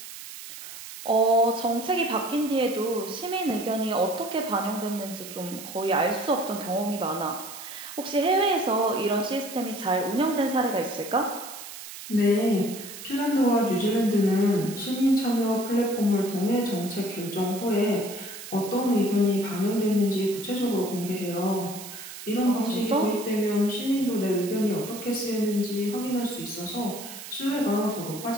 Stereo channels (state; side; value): noise; right; hiss, 12 dB below the sound